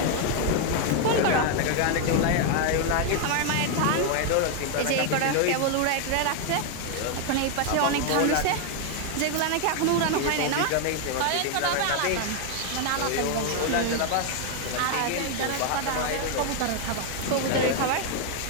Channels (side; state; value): both; different; correlation 0.01